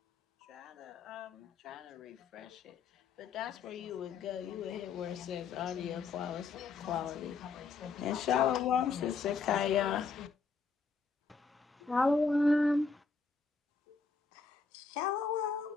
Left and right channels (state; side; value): quieter; right; 4.8 dB